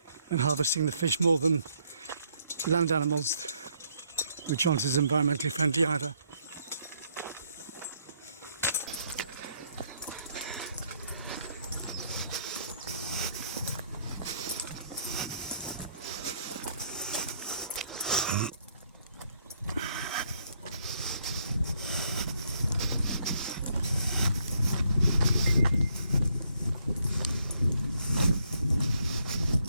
and harvesting the fish more than land animals, which aren't as environmentally friendly either.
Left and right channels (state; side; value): inverted; both; correlation -0.70